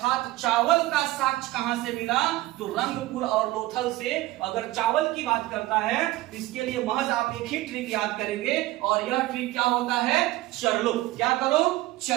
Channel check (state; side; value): quieter; left; 17.6 dB